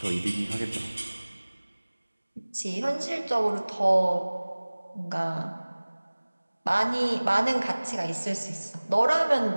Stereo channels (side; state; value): both; inverted; correlation -1.00